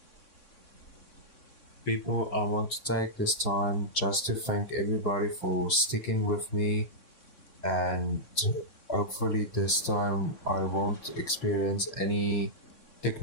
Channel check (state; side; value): late; right; 3.6 ms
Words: People, I want to take this time just to thank everybody for sticking with me and Hopefully, this time I won't experience any